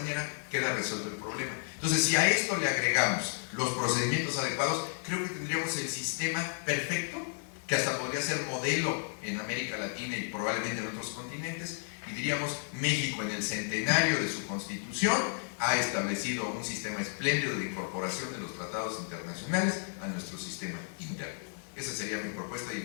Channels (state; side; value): silent; right; digital silence